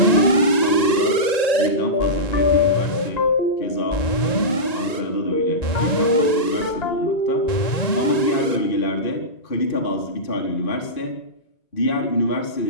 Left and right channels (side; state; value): right; late; 1.9 ms